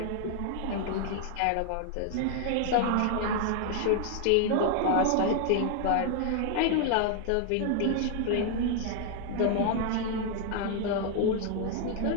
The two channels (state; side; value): different; both; correlation 0.00